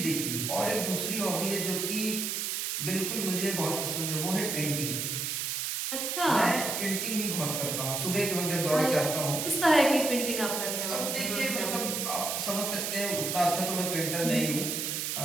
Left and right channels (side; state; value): right; noise; hiss, 1 dB below the sound